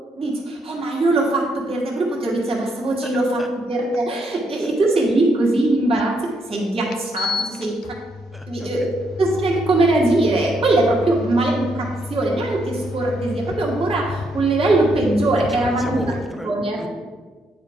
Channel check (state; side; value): normal; both; correlation 0.76